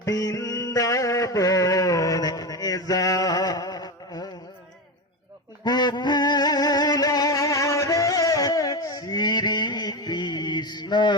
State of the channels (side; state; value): both; normal; correlation 0.18